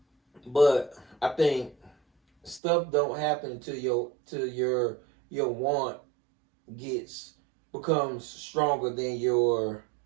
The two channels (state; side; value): drops out; left; at 2.6 s